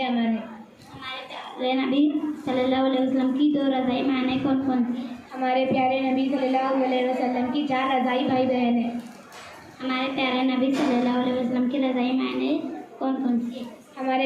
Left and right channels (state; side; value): identical; both; correlation 1.00